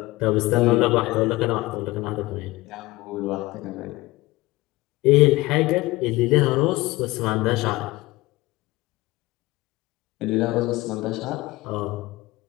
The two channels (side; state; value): right; quieter; 20.1 dB